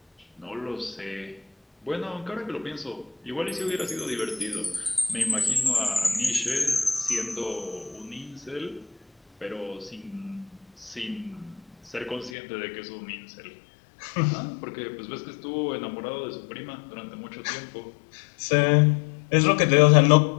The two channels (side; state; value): right; drops out; at 12.3 s